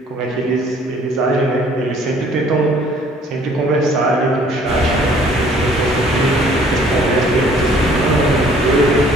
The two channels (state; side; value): normal; both; correlation 0.57